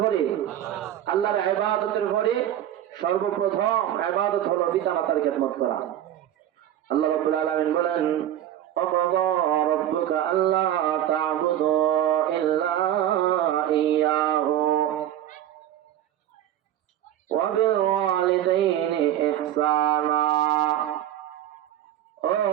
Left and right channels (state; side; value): quieter; left; 11.6 dB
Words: পরে? আল্লাহর ইবাদতের পরে সর্বপ্রথম ইবাদত হলো পিতামাতার খেদমত করা। আল্লাহ রাব্বুল আলামিন বলেন, وَقَضَى رَبُّكَ أَلَّا تَعْبُدُوا إِلَّا إِيَّاهُ وَبِالْوَالِدَيْنِ إِحْسَانًا। ও